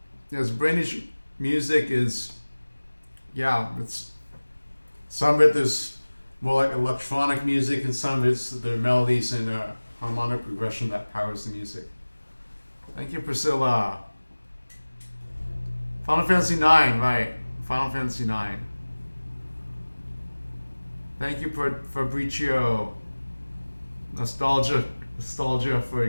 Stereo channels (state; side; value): inverted; both; correlation -1.00